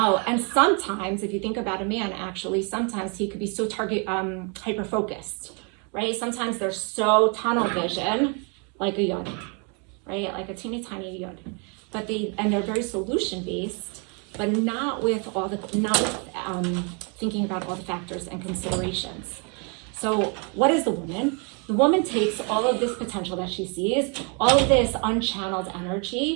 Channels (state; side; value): quieter; left; 35.9 dB